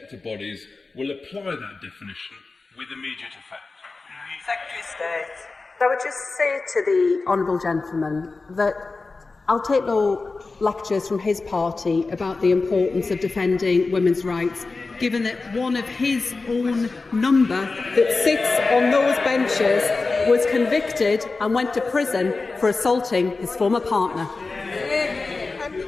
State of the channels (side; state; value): right; quieter; 3.8 dB